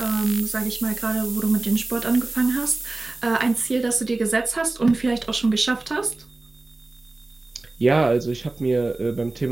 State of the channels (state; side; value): quieter; left; 3.1 dB